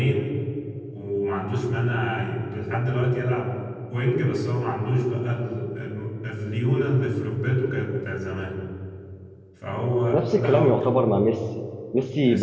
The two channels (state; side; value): identical; both; correlation 1.00